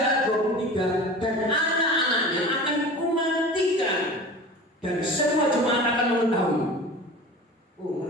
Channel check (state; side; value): normal; both; correlation 0.36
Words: 23, dan anak-anaknya akan kumatikan dan semua jemaat akan mengetahui. Oh,